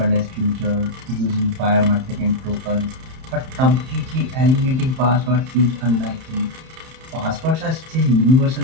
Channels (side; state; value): left; late; 31 ms